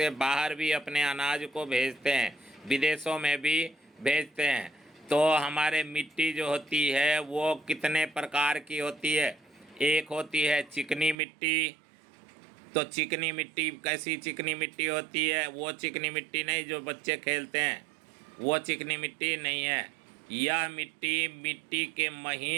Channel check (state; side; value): drops out; left; at 11.2 s